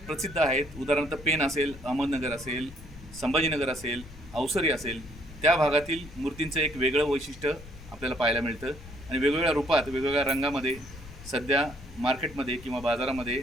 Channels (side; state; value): left; noise; rumble, 16 dB below the sound